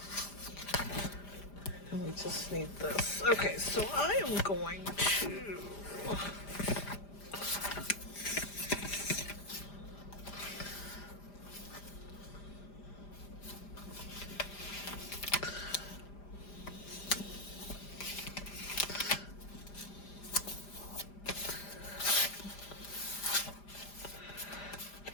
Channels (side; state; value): right; late; 5.0 ms